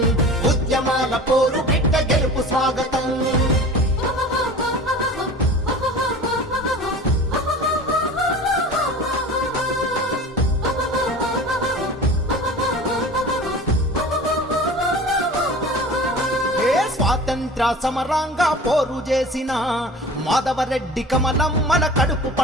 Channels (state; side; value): normal; both; correlation 0.38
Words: ఉద్యమాల పోరు బిడ్డ గెలుపు స్వాగతం. స్వాతంత్ర సమరంగా పోరు చేసిన మాధవరెడ్డి కమలం మన కడుపు